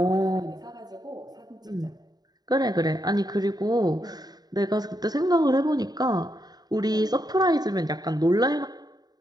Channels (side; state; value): left; late; 0.19 ms